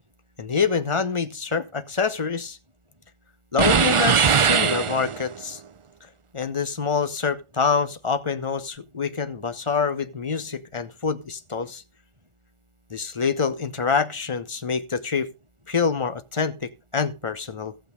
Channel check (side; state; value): left; late; 1.4 ms